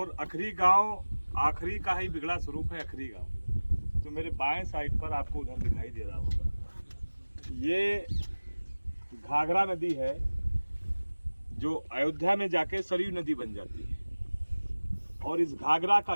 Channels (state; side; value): inverted; both; correlation -1.00